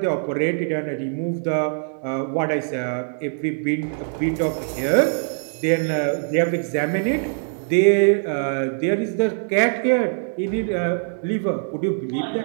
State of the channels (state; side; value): silent; left; digital silence